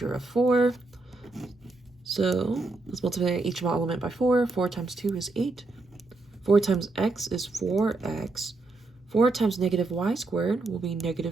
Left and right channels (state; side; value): quieter; left; 3.4 dB